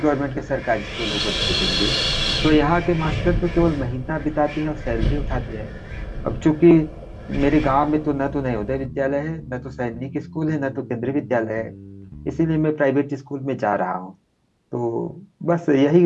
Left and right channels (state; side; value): identical; both; correlation 1.00